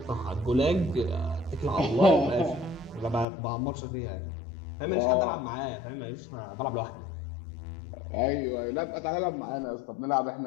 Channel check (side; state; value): right; drops out; at 3.2 s